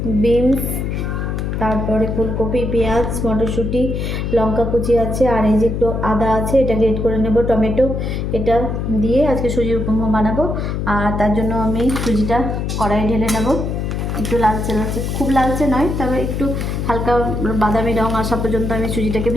বিনস, তারপরে ফুলকপি, পেঁয়াজ, মটরশুঁটি, লঙ্কা কুচি আছে, আর এই যে একটু আদা আছে, এটা গ্রেট করে নেব, টমেটো, এটা দিয়ে আজকে সুজির উপমা বানাবো। আর তার জন্য আমি সুজিটা কড়াইয়ে ঢেলে নেব। একটু লালচে লালচে, খুব লালচে নয়, তবে একটু হালকা বাদামি রং আসা পর্যন্ত আমি সুজিটাকে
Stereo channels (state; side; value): noise; left; hum, 2 dB below the sound